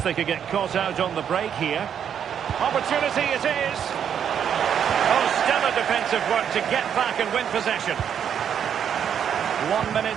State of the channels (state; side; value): quieter; left; 8.5 dB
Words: they could get caught out on the break here. Opportunity it is. Oh, stellar defensive work to get back and win possession. 1